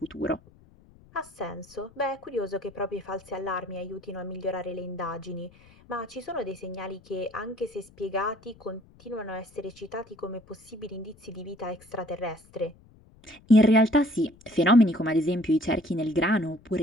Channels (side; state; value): left; noise; rumble, 26 dB below the sound